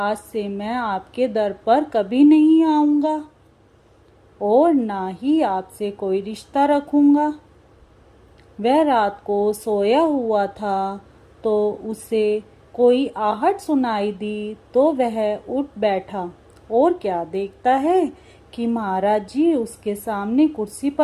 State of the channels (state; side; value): identical; both; correlation 1.00